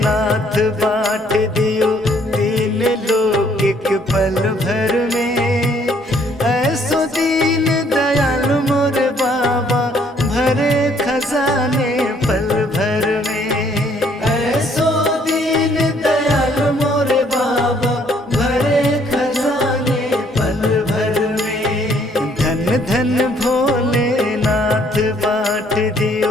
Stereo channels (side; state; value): both; normal; correlation 0.64